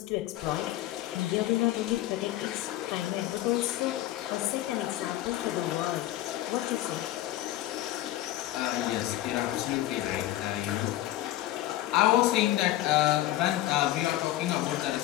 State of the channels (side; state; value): right; quieter; 15.1 dB